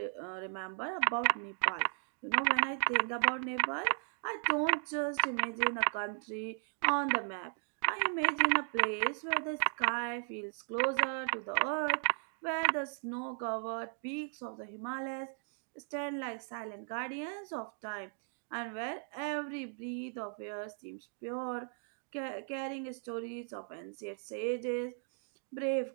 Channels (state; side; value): silent; left; 54 dB below the other